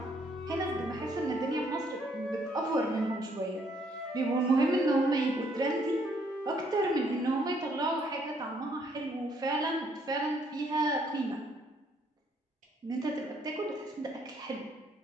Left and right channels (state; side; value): normal; both; correlation 0.68